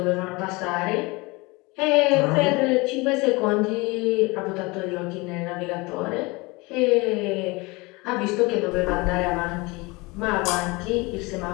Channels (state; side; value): quieter; right; 24.8 dB